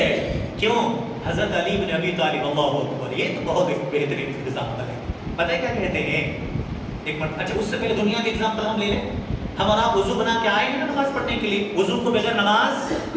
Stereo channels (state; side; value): identical; both; correlation 1.00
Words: کیوں؟ حضرت علی بن ابی طالب، اللہ اکبر، یہ تو بہت ایک بہترین ایگزامپل ہے۔ پتہ ہے کیا کہتے ہیں، ایک منٹ، اچھا اس سے پہلے دنیا کے ایگزامپل ہم لے لیں۔ ہم اور آپ وضو بنا کے آئے ہیں نا نماز پڑھنے کے لیے، وضو کو بغیر نماز